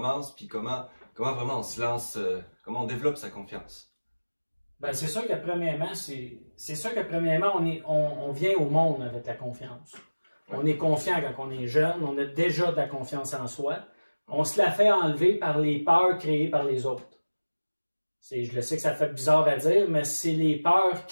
puis comment vraiment on se lance, comment on développe sa confiance. Ben, c'est sûr que premièrement, on vient au monde avec la confiance. Ouais. On est confiant quand on est jeune, on a déjà de la confiance en soi. On se la fait enlever par les peurs créées par les autres. Je le sais que ça fait bizarre à dire, mais c'est les peurs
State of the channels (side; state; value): both; inverted; correlation -1.00